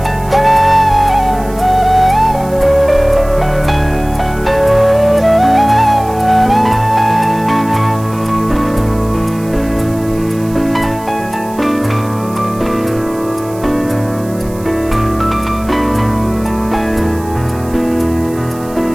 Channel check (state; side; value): noise; right; hiss, 21 dB below the sound